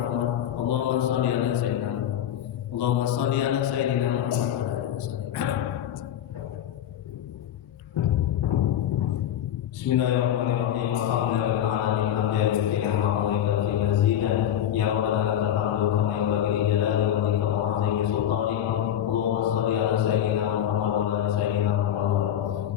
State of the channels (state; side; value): quieter; right; 10.7 dB